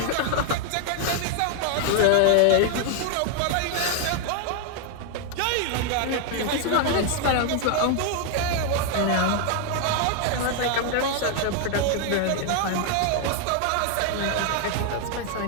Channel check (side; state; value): both; different; correlation 0.00